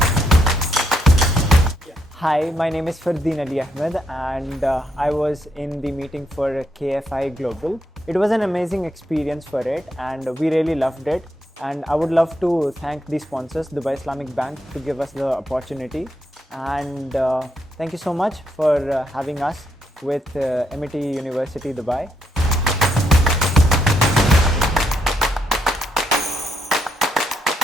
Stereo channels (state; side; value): normal; both; correlation 0.78